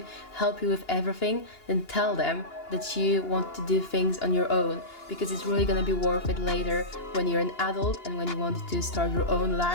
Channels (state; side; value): late; right; 2.9 ms